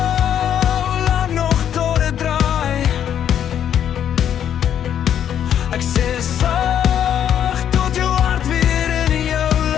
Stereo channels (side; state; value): right; quieter; 9.6 dB